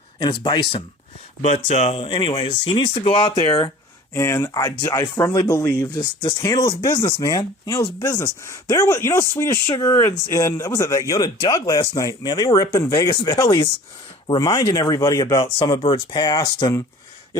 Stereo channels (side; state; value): both; normal; correlation 0.45